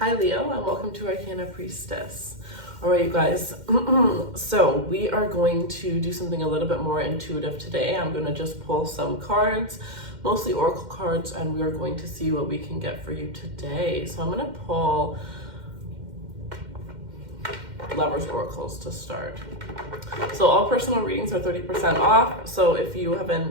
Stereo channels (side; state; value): left; late; 2.1 ms